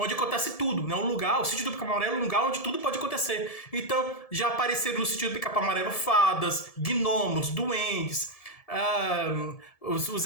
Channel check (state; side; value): late; right; 1.7 ms